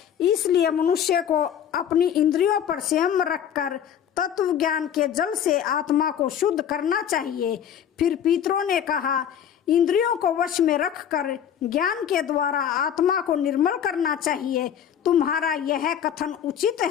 इसलिए मनुष्य को अपनी इंद्रियों पर संयम रखकर तत्व ज्ञान के जल से आत्मा को शुद्ध करना चाहिए। फिर पितरों ने कहा, इंद्रियों को वश में रखकर ज्ञान के द्वारा आत्मा को निर्मल करना चाहिए। तुम्हारा यह कथन उचित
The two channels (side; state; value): right; quieter; 9.1 dB